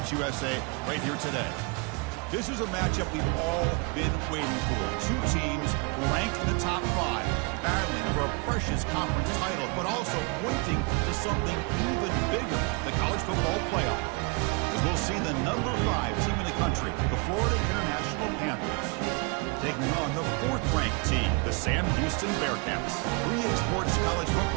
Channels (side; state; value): left; quieter; 31.6 dB